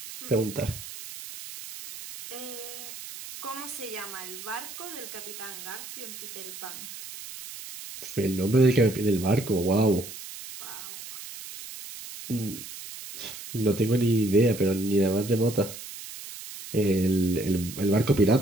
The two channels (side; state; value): right; noise; hiss, 12 dB below the sound